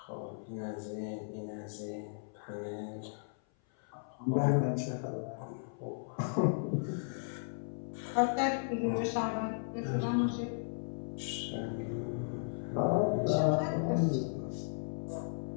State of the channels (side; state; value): right; silent; 54 dB below the other